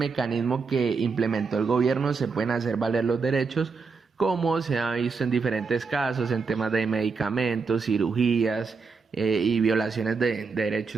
que implementó el gobierno se pueden hacer valer los derechos, como se ha visto en diferentes casos en temas de medicamentos, cirugías y violaciones de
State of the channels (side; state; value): left; quieter; 4.9 dB